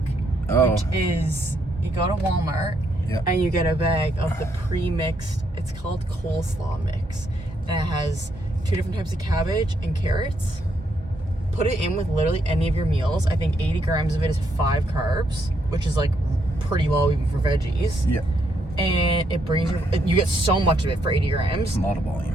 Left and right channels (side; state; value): both; normal; correlation 0.75